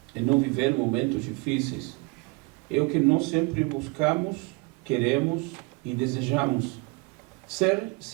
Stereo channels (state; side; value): quieter; left; 27.9 dB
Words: em não viver momentos difíceis, é o que nós sempre buscamos, queremos e desejamos. Ser